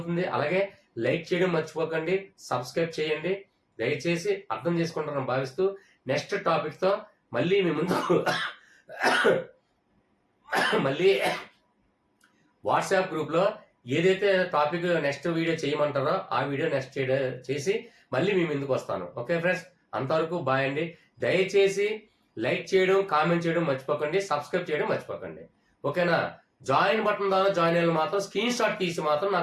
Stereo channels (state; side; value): identical; both; correlation 1.00